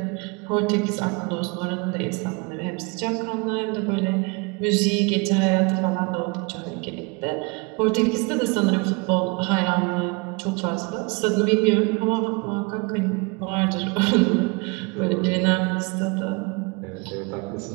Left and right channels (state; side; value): quieter; left; 29.4 dB